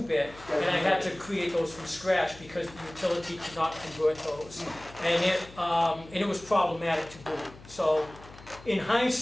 and I had to create those from scratch because the utility could not convert those. And it was problematic to boot. So in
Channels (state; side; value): noise; left; hum, 20 dB below the sound